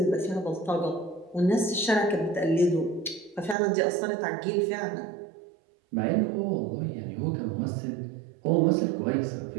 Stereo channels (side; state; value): left; drops out; at 3.6 s